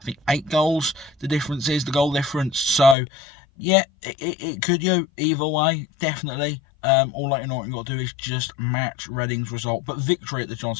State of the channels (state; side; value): drops out; right; at 3.0 s